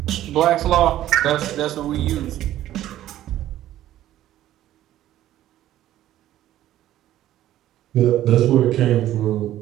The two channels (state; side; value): quieter; left; 13.3 dB